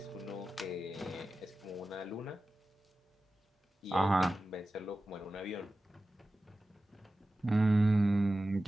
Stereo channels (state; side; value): normal; both; correlation 0.95